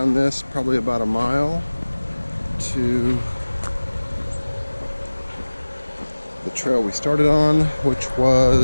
this probably about a mile to the trail we started on, which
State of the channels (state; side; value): inverted; both; correlation -1.00